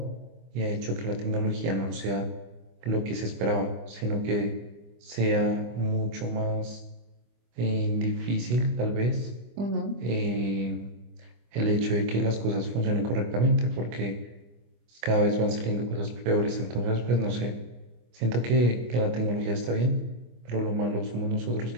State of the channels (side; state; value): left; late; 25 ms